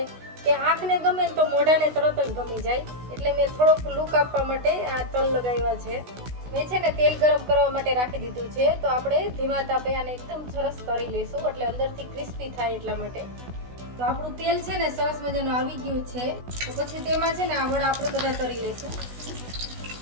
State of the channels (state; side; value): late; left; 16 ms